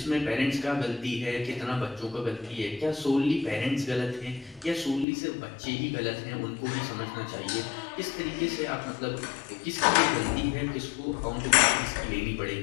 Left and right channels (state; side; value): drops out; right; at 5.1 s